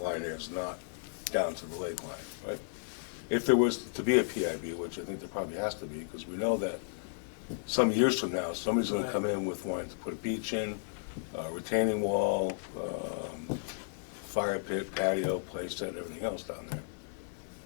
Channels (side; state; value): right; silent; digital silence